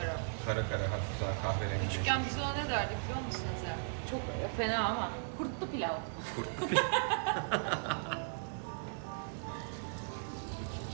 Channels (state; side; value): silent; left; digital silence